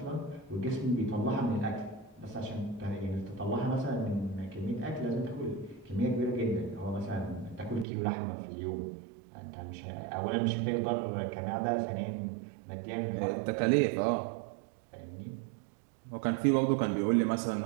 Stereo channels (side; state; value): left; drops out; at 7.9 s